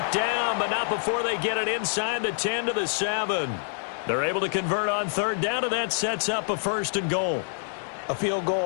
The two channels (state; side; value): silent; right; 60 dB below the other